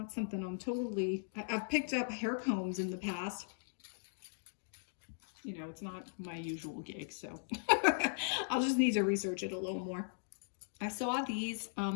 something I've picked up hair combs in the past. You know, it's not my usual gig, so I'll just need to research it a little more. I saw these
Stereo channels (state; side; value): silent; right; digital silence